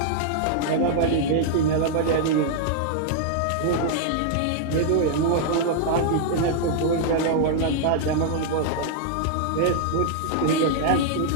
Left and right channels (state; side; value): different; both; correlation -0.01